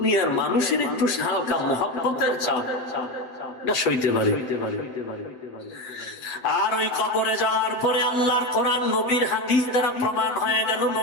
মানুষের একটু হালকা মহব্বতের চাপ এটা সইতে পারে। আর ওই কবরে যাওয়ার পরে আল্লাহর কোরআন নবীর হাদিস দ্বারা প্রমাণ হয়ে গেল।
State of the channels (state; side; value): late; right; 7.9 ms